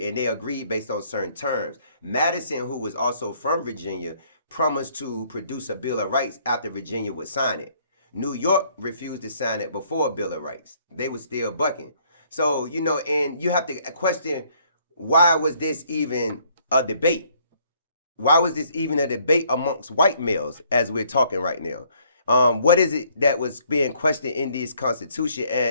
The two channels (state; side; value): inverted; both; correlation -0.64